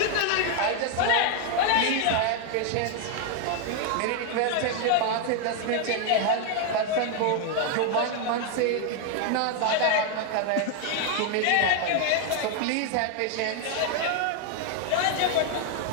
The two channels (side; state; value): both; different; correlation 0.00